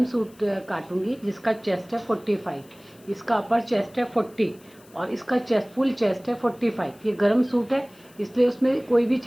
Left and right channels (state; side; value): noise; left; hiss, 27 dB below the sound